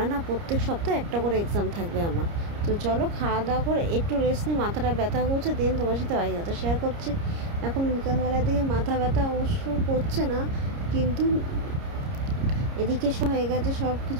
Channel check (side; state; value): left; late; 30 ms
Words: না প্রত্যেক সপ্তাহে একটা করে এক্সাম থাকবে আমার। তো চলো খাওয়া দাওয়া করে একটু রেস্ট নিই, মাথাটা ব্যথা করছে, দেন তোমার সাথে বাকি কথা শেয়ার করছি। এখন বিকালবেলার দিকে মাথা ব্যথা অবশ্য করছে না, কিন্তু এদিকে হয়ে গেছে, সব